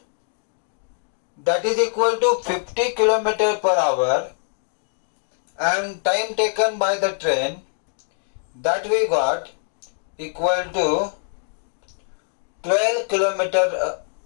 that is equal to 50 km per hour, and time taken by the train, that we got equal to 12 kilometer,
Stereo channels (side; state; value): right; silent; digital silence